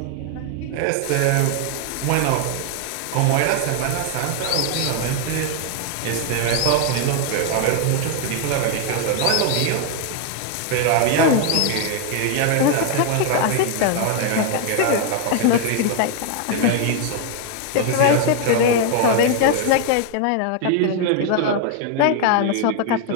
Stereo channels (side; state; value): both; different; correlation 0.00